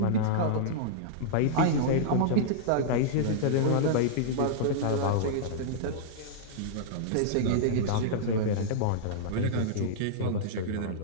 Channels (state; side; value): different; both; correlation -0.02